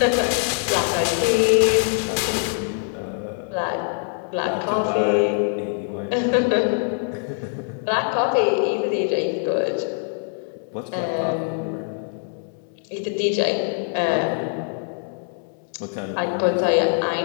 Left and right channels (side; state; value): right; silent; 63 dB below the other